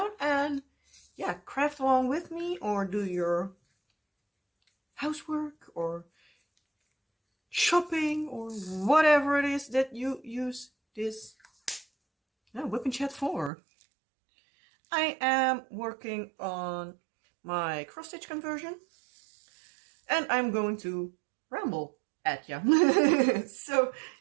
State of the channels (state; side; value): drops out; left; at 13.5 s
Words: and yeah, craft along with me or do your housework or shopping or whatever it is that you use this WIP and Chat for. I am working on my cross-stitch conversion and I'm going to ramble at you. So